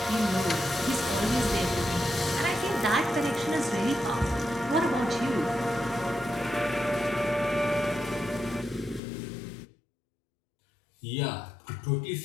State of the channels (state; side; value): drops out; right; at 9.0 s